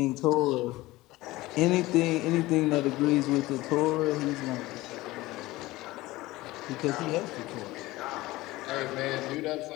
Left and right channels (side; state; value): right; quieter; 18.9 dB